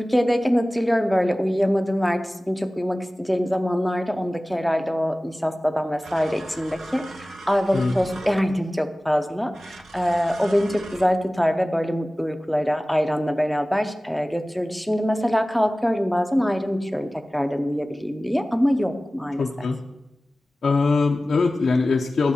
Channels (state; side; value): normal; both; correlation 0.97